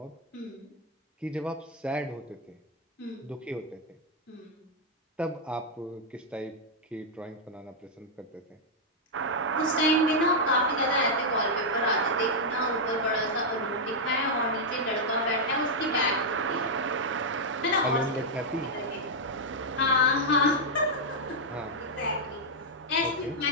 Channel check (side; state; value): both; normal; correlation -0.04